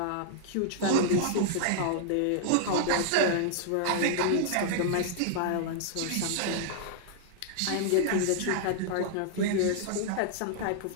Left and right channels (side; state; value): both; different; correlation -0.01